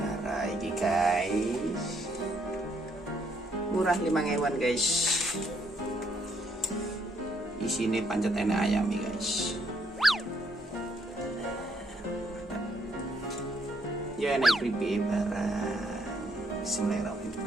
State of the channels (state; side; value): normal; both; correlation 0.71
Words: ini guys, murah 5.000-an guys. Di sini pancetene ayam nih guys. Ya naik keripik barang.